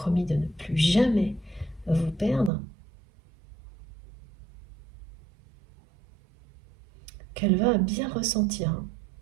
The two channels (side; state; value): left; drops out; at 2.5 s